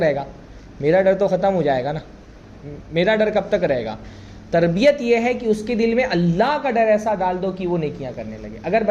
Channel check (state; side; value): identical; both; correlation 1.00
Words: گا؟ میرا ڈر تو ختم ہو جائے گا نا. میرا ڈر کب تک رہے گا؟ تربیت یہ ہے کہ اس کے دل میں اللہ کا ڈر ایسا ڈال دو کہ وہ نیکیاں کرنے لگے. اگر